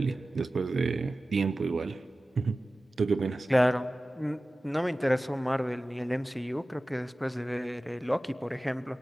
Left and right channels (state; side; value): normal; both; correlation 0.96